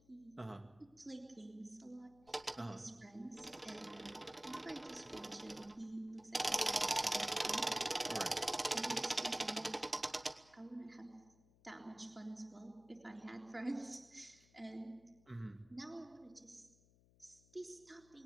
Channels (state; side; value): noise; left; hum, 27 dB below the sound